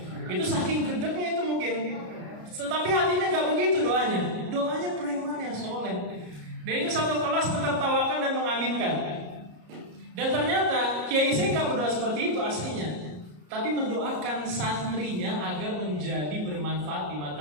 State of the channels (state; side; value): late; left; 33 ms